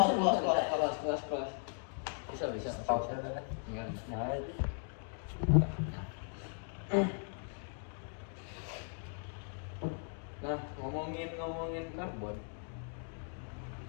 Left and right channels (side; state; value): right; silent; 53 dB below the other